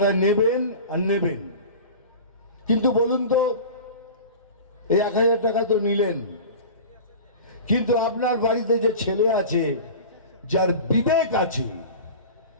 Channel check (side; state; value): both; inverted; correlation -0.35